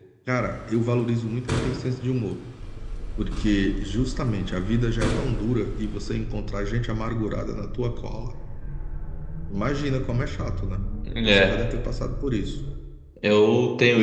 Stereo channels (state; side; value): identical; both; correlation 1.00